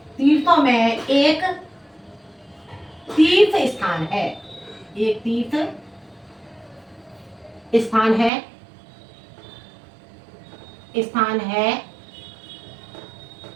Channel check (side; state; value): left; drops out; at 8.3 s